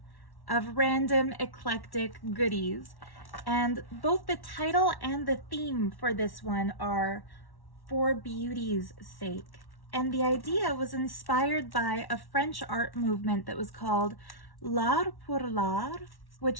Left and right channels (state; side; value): late; right; 1.1 ms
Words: of random eclectic goodies. And both the title and the theme for this one are For Beauty's Sake. And the idea was inspired by a French art movement that was called L'art pour l'art,